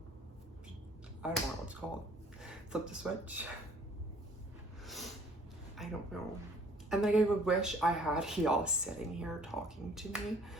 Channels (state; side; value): normal; both; correlation 0.57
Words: I don't know what it's called, flip the switch? I don't know. And like, I would wish I had y'all sitting here talking to me